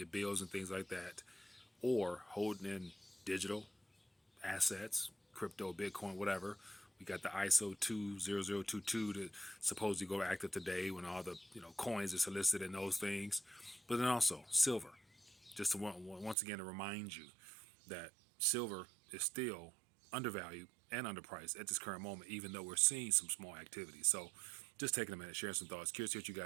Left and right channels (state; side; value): drops out; left; at 16.4 s